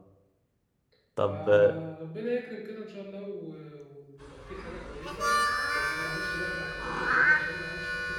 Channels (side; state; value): both; identical; correlation 1.00